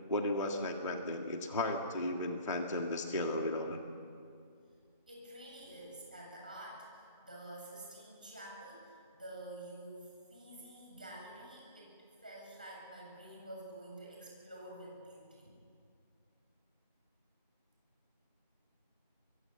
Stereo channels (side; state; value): both; inverted; correlation -0.40